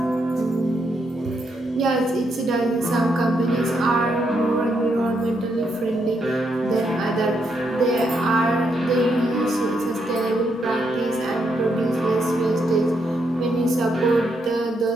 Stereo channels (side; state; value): both; normal; correlation 0.78